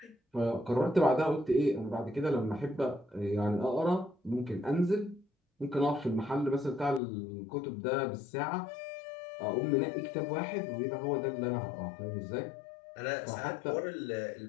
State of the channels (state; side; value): drops out; right; at 7.0 s